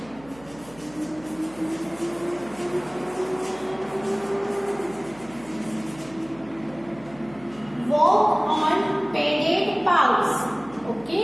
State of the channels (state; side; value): noise; right; hum, 23 dB below the sound